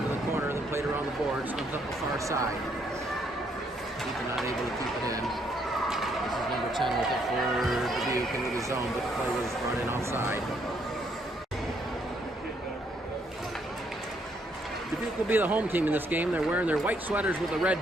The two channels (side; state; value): both; normal; correlation 0.71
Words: the corner, then played around the boards, comes up the far side. Ethan not able to keep it in. This is number 10 with it for Dubuque into the zone, but the play was brought in outside. Dubuque will be the home team in this game. They're wearing their white sweaters with the